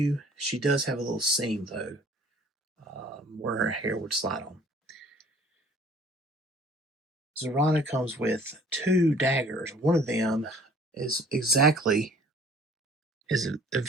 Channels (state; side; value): normal; both; correlation 0.53